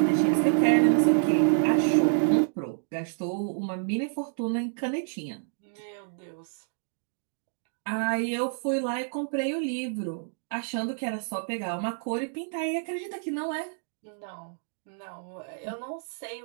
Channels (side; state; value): left; silent; digital silence